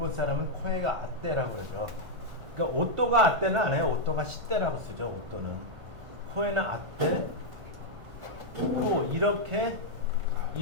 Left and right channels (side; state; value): left; late; 1.4 ms